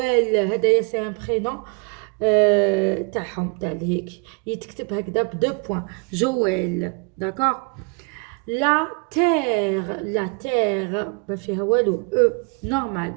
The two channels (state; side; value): quieter; left; 33.5 dB